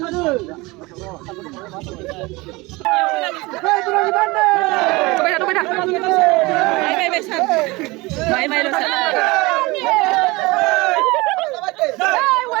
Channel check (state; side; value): quieter; left; 23.1 dB